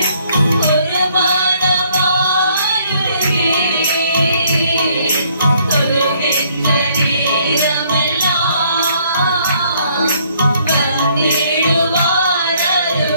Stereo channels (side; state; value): both; inverted; correlation -0.65